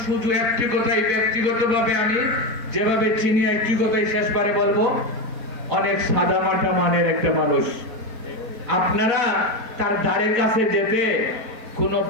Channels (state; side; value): late; left; 4.1 ms